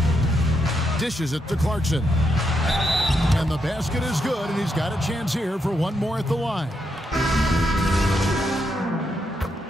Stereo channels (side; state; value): both; normal; correlation 0.81